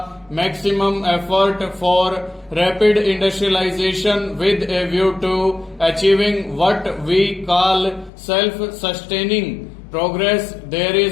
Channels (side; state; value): right; drops out; at 8.1 s